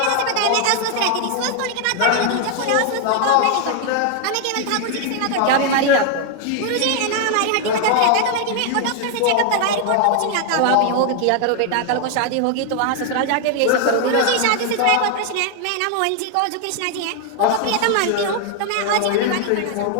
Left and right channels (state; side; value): different; both; correlation 0.00